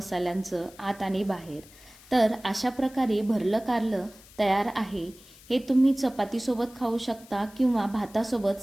आत आणि बाहेर। तर अशा प्रकारे भरलं कारलं तयार आहे। हे तुम्ही चपातीसोबत खाऊ शकता किंवा भातासोबत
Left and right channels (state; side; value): noise; left; hiss, 23 dB below the sound